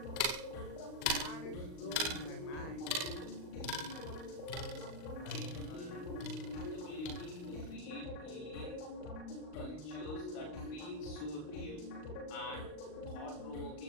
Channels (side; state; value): right; late; 39 ms